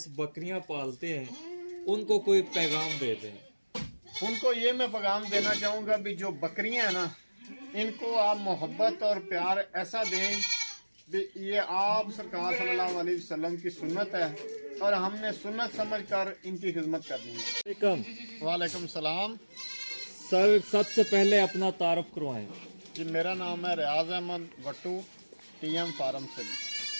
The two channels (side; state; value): both; inverted; correlation -1.00